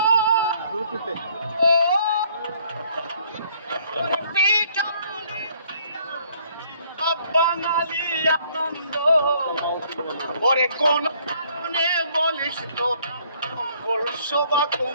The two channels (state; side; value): inverted; both; correlation -0.63